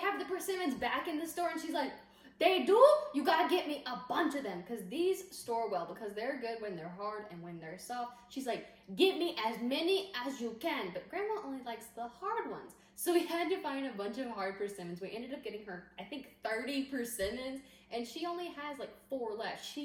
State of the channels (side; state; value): both; identical; correlation 1.00